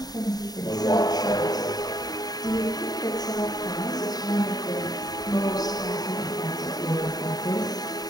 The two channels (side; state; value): right; late; 0.19 ms